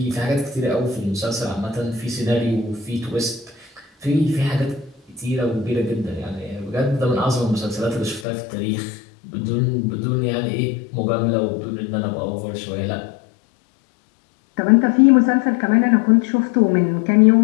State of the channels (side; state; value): right; drops out; at 8.2 s